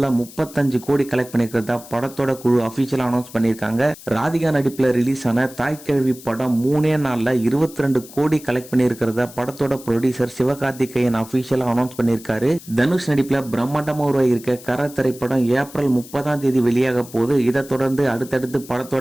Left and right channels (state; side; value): noise; left; hiss, 18 dB below the sound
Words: 35 கோடி கலெக்ட் பண்ணிருக்கிறதா படத்தோட குழு அபிஷியலா அனௌன்ஸ் பண்ணிருக்காங்க. ராதிகா நடிப்புல ரிலீஸ் ஆன தாய்க்கிழவி படம் 3 நாள்ல 22 கோடி கலெக்ட் பண்ணிருக்கிறதா படத்தோட ப்ரொடியூசர் சிவகார்த்திகேயன் அபிஷியலா அனௌன்ஸ் பண்ணிருக்காரு. தனுஷ் நடிப்புல பிரம்மாண்டமா உருவாகியிருக்க கர திரைப்படம் ஏப்ரல் 30 வெளியாக போகுது. இதை தொடர்ந்து அடுத்தடுத்து